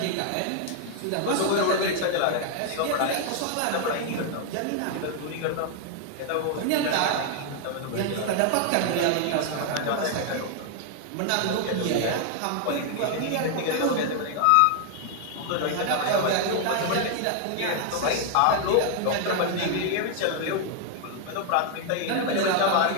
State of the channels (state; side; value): different; both; correlation 0.00